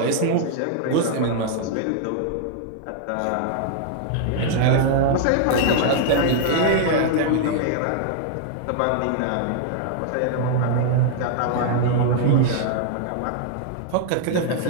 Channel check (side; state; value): both; different; correlation -0.01